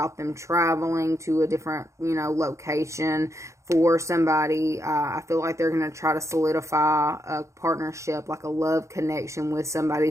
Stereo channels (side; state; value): left; late; 0.14 ms